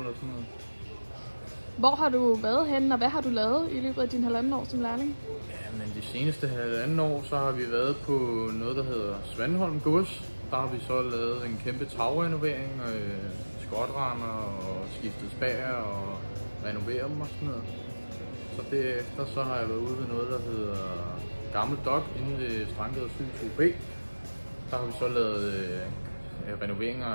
sådan noget. Hvor har du været henne, og hvad har du lavet i løbet af din halvanden år som lærling? Ja, men de seneste halvanden år, så har vi været på noget, der hedder Svanholm Gods. Der har vi så lavet en kæmpe tagrenovering, skotrender og skiftet spær og renoveret dem og sådan noget. Så derefter så har jeg været ude ved noget, der hedder Gammel Dok inde ved Strandgade 7-2B. Der har vi så lavet renoveringer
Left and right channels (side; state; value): both; inverted; correlation -1.00